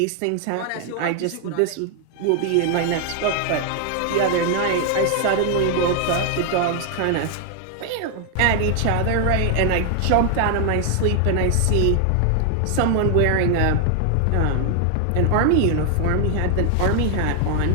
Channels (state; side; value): different; both; correlation 0.00